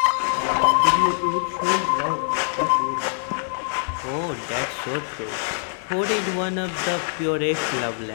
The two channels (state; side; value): silent; right; digital silence